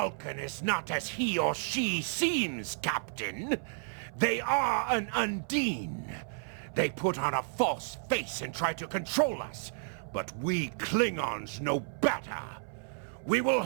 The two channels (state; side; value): silent; left; 56 dB below the other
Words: is not as he or she seems, Captain. They are an Undine. They put on a false face and try to control us, but we Klingons know better. We will